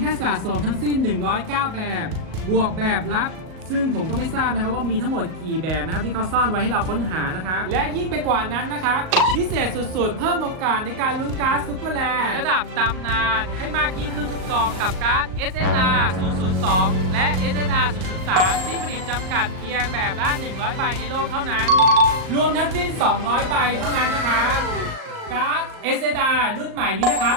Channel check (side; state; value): left; late; 38 ms